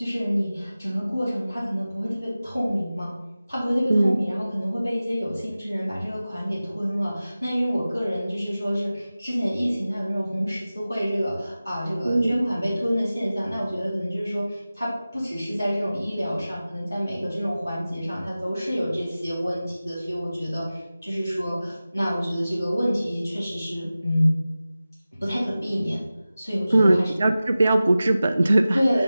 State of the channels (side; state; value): both; inverted; correlation -0.96